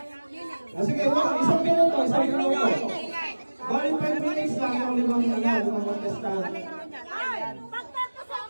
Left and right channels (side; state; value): both; inverted; correlation -1.00